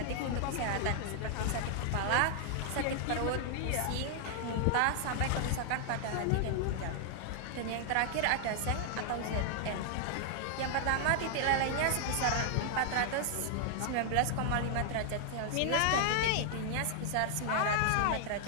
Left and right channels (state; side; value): different; both; correlation 0.00